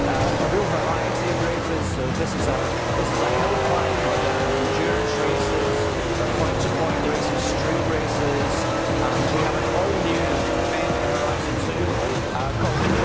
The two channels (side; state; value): both; identical; correlation 1.00